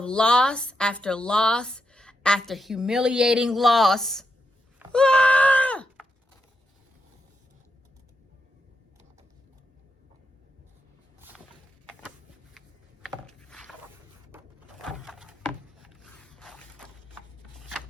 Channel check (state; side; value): normal; both; correlation 0.84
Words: loss after loss after humiliating loss. Ah!